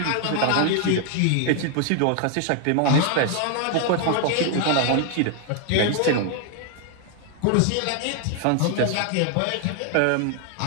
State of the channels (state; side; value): different; both; correlation 0.00